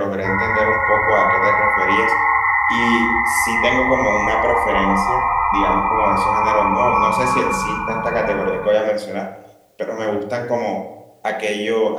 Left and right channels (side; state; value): both; identical; correlation 1.00